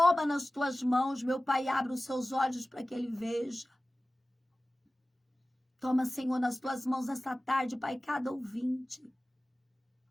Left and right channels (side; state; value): both; normal; correlation 0.97